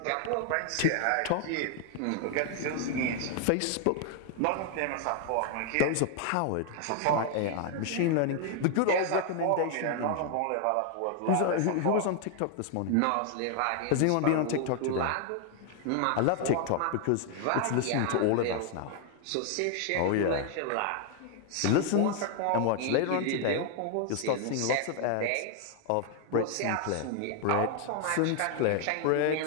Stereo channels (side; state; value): both; different; correlation 0.00